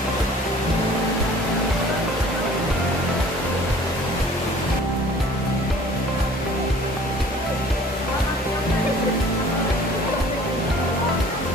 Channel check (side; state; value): both; normal; correlation 0.50